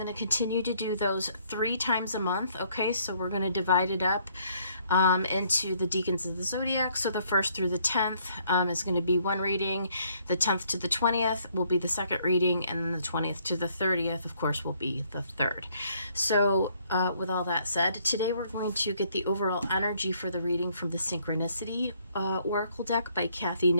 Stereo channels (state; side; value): inverted; both; correlation -0.67